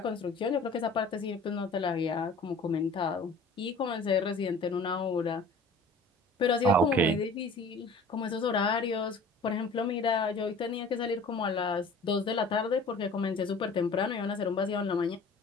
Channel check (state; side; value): quieter; right; 3.2 dB